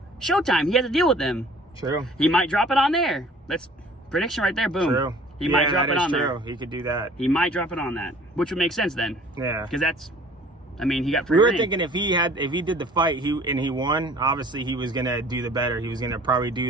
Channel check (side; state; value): both; normal; correlation 0.51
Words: Showtime, he has to deal with them. True. He might drop it on there. That's prediction right there, boom. True. He might drop it on there. He could do that. He might drop it on that, which would make sense then. Yeah. Because that's... I mean, he got free We were reign. thinking if he did the fight, he won. Obviously, he was gonna do the better. He was gonna probably